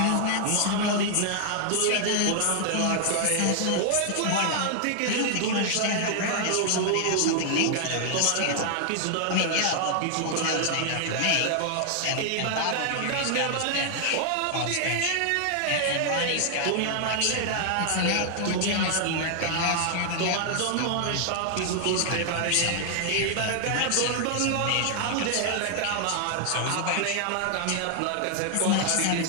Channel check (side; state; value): both; different; correlation 0.00